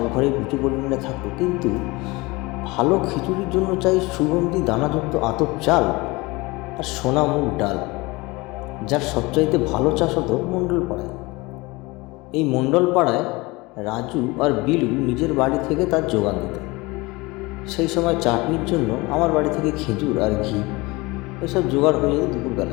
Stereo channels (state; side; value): quieter; right; 23.4 dB